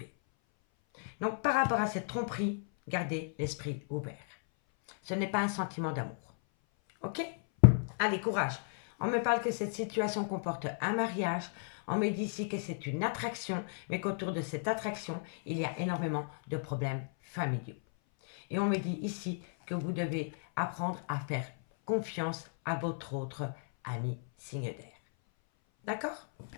Donc, par rapport à cette tromperie, gardez l'esprit ouvert. Ce n'est pas un sentiment d'amour. Ok? Allez, courage. On me parle que cette situation comporte un mariage. On me dit ici que c'est une attraction, mais qu'autour de cette attraction, il y a énormément de problèmes familiaux. Et on me dit ici que vous devez apprendre à faire confiance à votre autre ami signe d'air. D'accord?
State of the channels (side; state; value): right; silent; 55 dB below the other